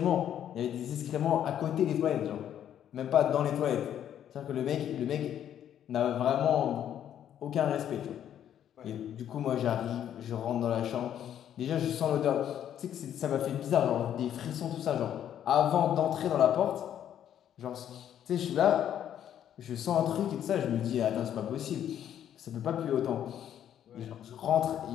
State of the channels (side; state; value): right; quieter; 10.2 dB